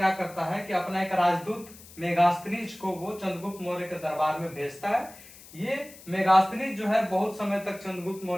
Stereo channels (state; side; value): noise; left; hiss, 20 dB below the sound